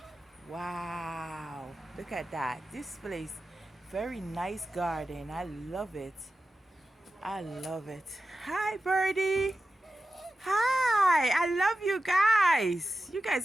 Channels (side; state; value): both; normal; correlation 0.92